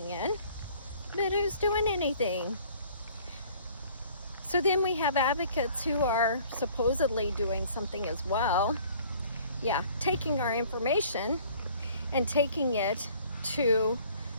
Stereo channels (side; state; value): both; inverted; correlation -0.54